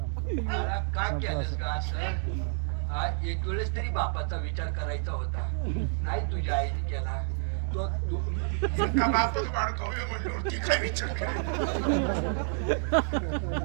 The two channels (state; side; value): silent; left; digital silence